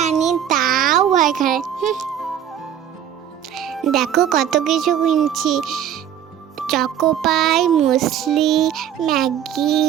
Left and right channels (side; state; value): left; quieter; 9.8 dB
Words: আনি, তাও ভয় করে। দেখো কত কিছু কিনছি, চকোপাই, মুসলি, ম্যাগি,